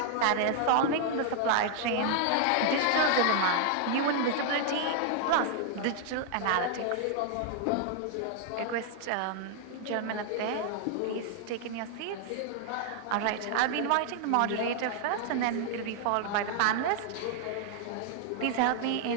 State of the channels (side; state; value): both; different; correlation 0.00